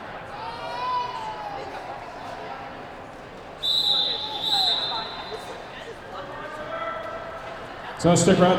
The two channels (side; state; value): both; identical; correlation 1.00